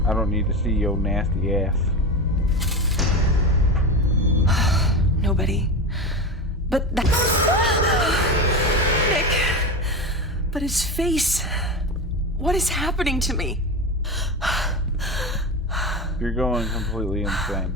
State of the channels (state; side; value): normal; both; correlation 0.22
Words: I don't need to see your nasty ass. Nobody. But that... Nick. But his face. What is happening to me? You're going completely insane.